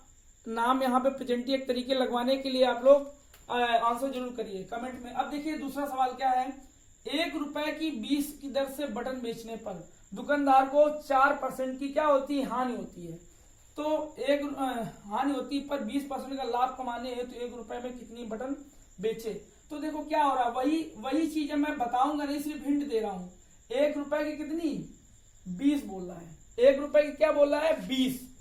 नाम यहाँ पे प्रेजेंटी एक तरीके लगवाने के लिए आप लोग आंसर जरूर करिए कमेंट में। अब देखिए दूसरा सवाल क्या है, 1 रुपए की 20 की दर से बटन बेचने पर दुकानदार को 4% की क्या होती है, हानि होती है। तो हानि होती है, पर 20% का लाभ कमाने है तो 1 रुपए में कितनी बटन बेचे। तो देखो क्या हो रहा है, वही चीज है, मैं बताऊंगा नहीं, सिर्फ हिंट दे रहा हूं। 1 रुपए की कितनी, 20 बोल रहा है, 1 रुपए की क्या बोल रहा है, 20।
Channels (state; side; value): identical; both; correlation 1.00